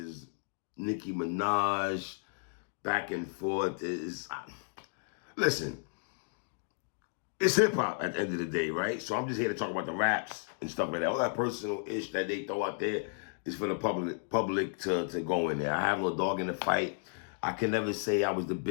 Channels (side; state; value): right; silent; digital silence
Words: Nicki Minaj. Back and forth. Listen, it's hip-hop at the end of the day, right? So I'm just here to talk about the raps and stuff like that. All that personal ish that they throw out there is for the public to go in there. I have no dog in the fight. I can never say I was the